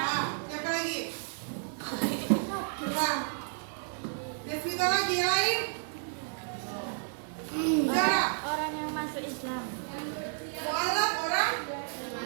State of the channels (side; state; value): left; silent; digital silence